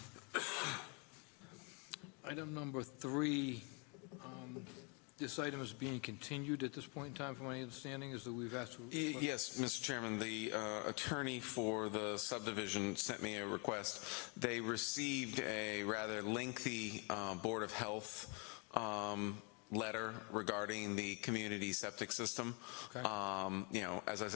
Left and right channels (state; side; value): quieter; right; 34.0 dB